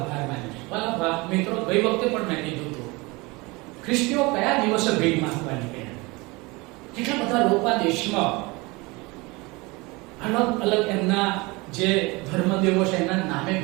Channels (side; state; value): left; quieter; 24.7 dB